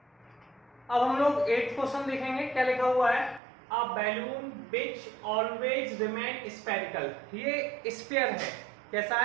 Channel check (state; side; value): drops out; left; at 3.4 s